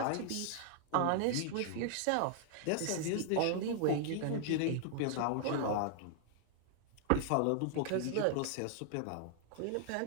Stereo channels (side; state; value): both; different; correlation -0.01